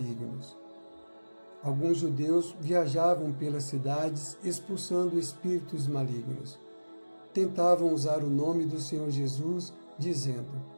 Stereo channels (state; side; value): inverted; both; correlation -1.00